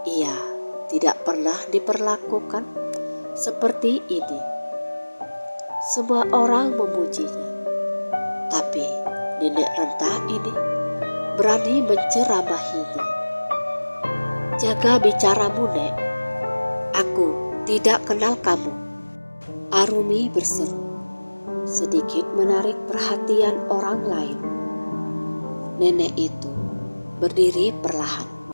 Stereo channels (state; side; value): inverted; both; correlation -1.00